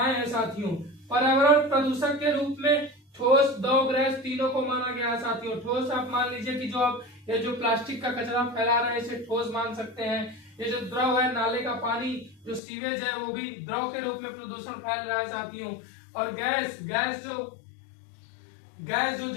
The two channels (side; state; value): right; drops out; at 12.6 s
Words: हैं। साथियों पर्यावरण प्रदूषक के रूप में ठोस, द्रव, गैस तीनों को माना गया है। साथियों ठोस आप मान लीजिए कि ये जो प्लास्टिक का कचरा फैला रहे हैं इसे ठोस मान सकते हैं। ये जो द्रव है, नाले का पानी, जो सीवेज है, वो भी द्रव के रूप में प्रदूषण फैल रहा है। साथियों और गैस